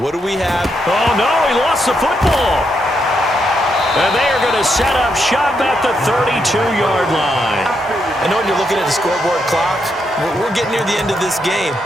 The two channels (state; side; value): normal; both; correlation 0.80